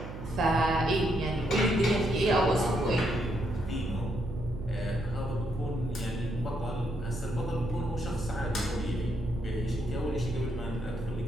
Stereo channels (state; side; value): noise; right; hum, 10 dB below the sound